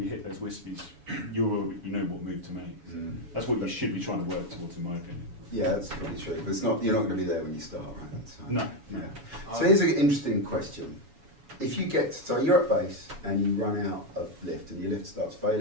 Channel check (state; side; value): late; left; 7.1 ms